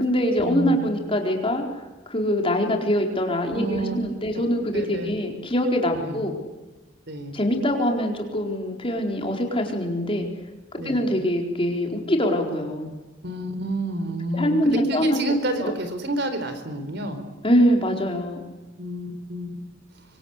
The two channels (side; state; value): both; normal; correlation 0.57